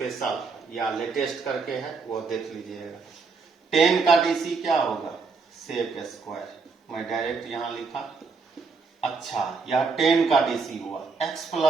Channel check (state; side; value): quieter; left; 4.6 dB